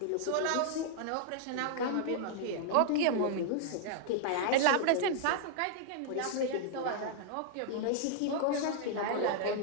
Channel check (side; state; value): both; different; correlation -0.01